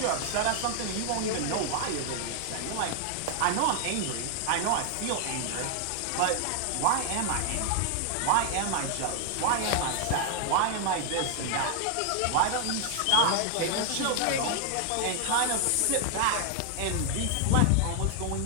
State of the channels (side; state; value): both; different; correlation 0.00